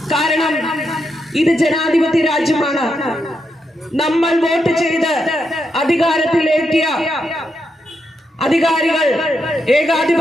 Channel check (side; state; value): both; normal; correlation 0.82